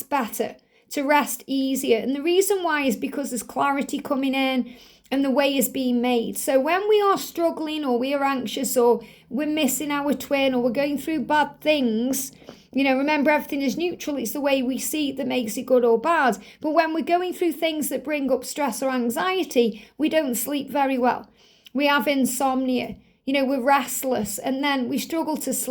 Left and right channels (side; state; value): both; identical; correlation 1.00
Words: better, to rest easier. And the reason why is because there's clarity coming in and the way is being made. So when we are struggling or we are anxious or we're missing our twin or we're going through bad things, remember everything is neutral. It's the way we see it that makes it good or bad. But when we're going through things that bring up stress or anxiety, we don't sleep very well. We have insomnia. We're restless and then we struggle to